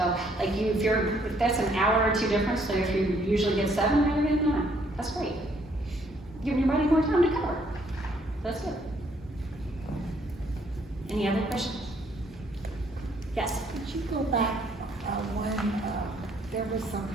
like if that's an hour or two difference, so if you usually get 7, now you're getting 9. That's great. Giving your body more time to cover. That's it. Any other questions? Yes. Could you go back when there were some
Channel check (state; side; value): normal; both; correlation 0.67